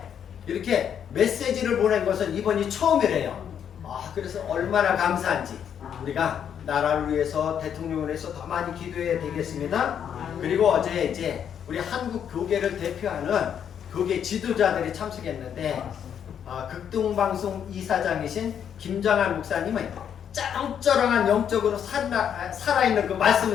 이렇게 메시지를 보낸 것은 이번이 처음이래요. 그래서 얼마나 감사한지 우리가 나라를 위해서, 대통령을 위해서 더 많이 기도해야 되겠습니다. 그리고 어제 이제 우리 한국 교계를 대표하는 교계 지도자들이 참석했는데 극동방송 이사장이신 김장한 목사님은 쩌렁쩌렁한 영적으로 살아있는 그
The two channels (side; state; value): right; quieter; 8.6 dB